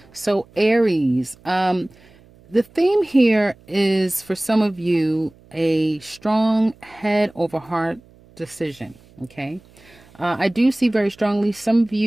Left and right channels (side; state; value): right; noise; hum, 27 dB below the sound